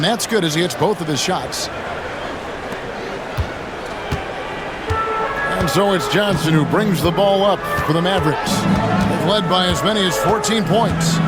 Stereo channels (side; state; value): both; identical; correlation 1.00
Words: that's good as he hits both of his shots. And so it's Johnson who brings the ball up for the Mavericks. They've led by as many as 14 points.